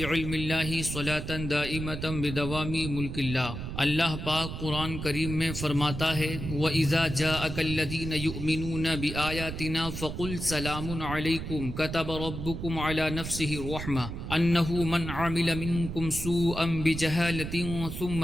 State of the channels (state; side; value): noise; right; rumble, 7 dB below the sound